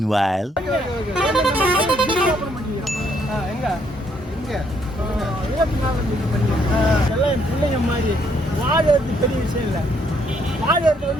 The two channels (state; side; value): normal; both; correlation 0.70